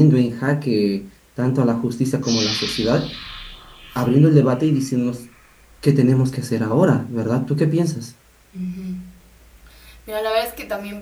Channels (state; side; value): identical; both; correlation 1.00